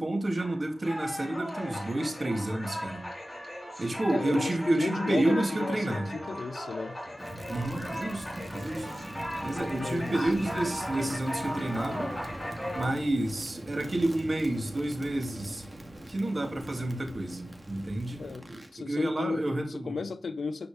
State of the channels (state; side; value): normal; both; correlation 0.95